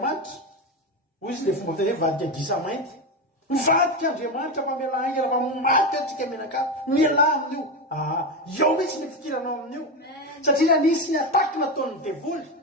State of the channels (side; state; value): both; normal; correlation 0.15